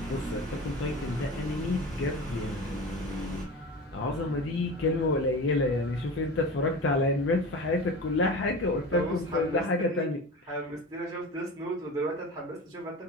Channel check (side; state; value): both; normal; correlation 0.31